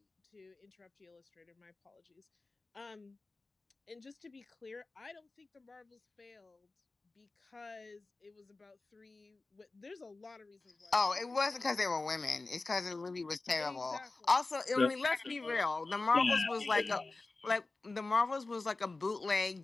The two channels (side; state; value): right; quieter; 3.5 dB